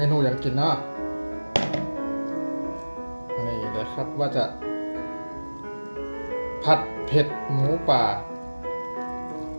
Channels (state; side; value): inverted; both; correlation -1.00